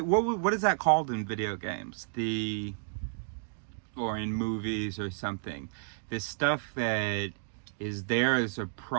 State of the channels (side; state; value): left; silent; digital silence